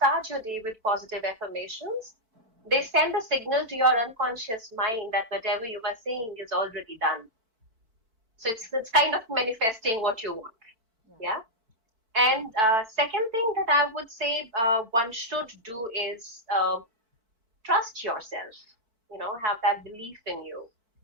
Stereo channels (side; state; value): left; late; 4.6 ms